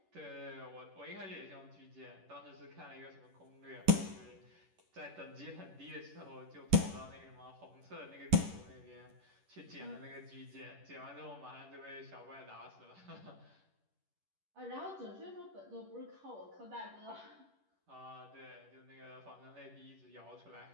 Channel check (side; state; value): left; late; 10 ms